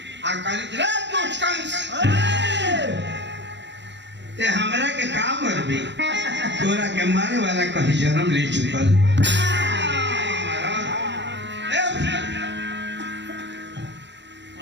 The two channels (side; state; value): left; late; 0.52 ms